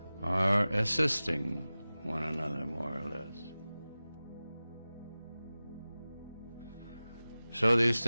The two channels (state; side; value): inverted; both; correlation -0.97